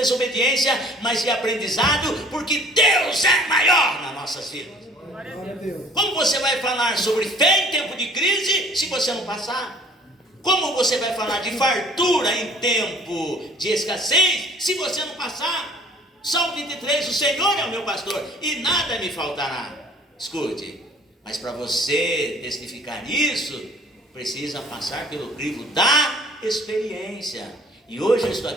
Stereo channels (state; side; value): normal; both; correlation 0.53